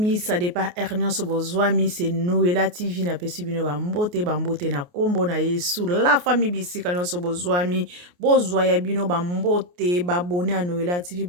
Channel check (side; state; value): left; late; 28 ms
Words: ça dépend Ernest Bozwami, c'est Noëlla TV na pesi bino bambote na kombo na Yesu. La famille bisika nyonso Bozwami, bozwaya bino bambote, babone à Noëlla TV,